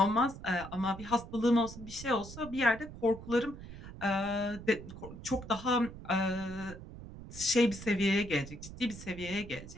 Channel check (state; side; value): noise; right; rumble, 13 dB below the sound